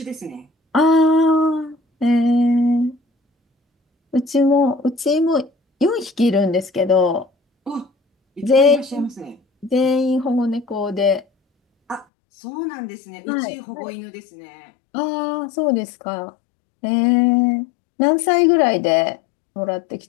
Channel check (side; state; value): right; drops out; at 12.1 s